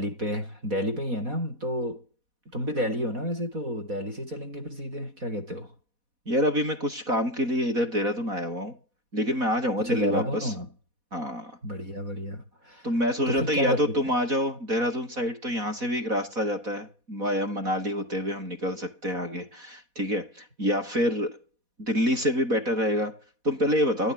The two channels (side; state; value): left; late; 4.1 ms